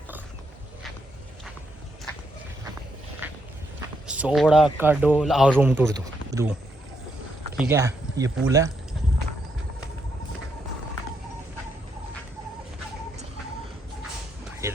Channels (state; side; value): normal; both; correlation 0.78